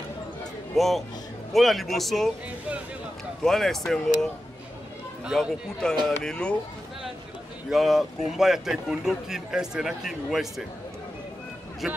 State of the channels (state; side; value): normal; both; correlation 0.92